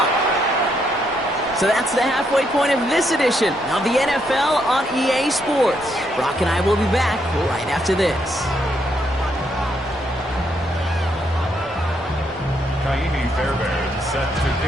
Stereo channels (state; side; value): normal; both; correlation 0.75